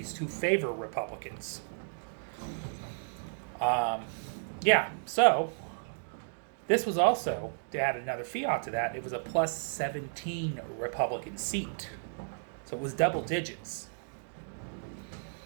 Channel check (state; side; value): silent; left; digital silence